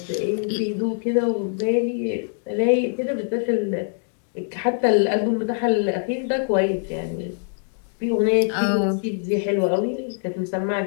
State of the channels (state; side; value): silent; right; digital silence